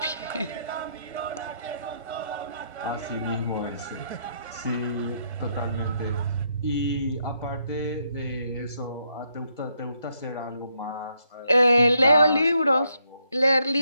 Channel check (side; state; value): both; inverted; correlation -0.76